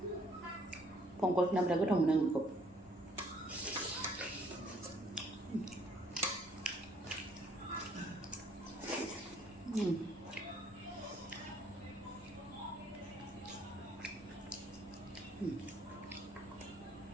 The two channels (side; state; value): both; normal; correlation 0.63